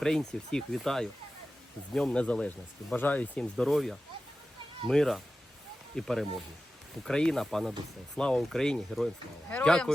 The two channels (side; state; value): both; normal; correlation 0.94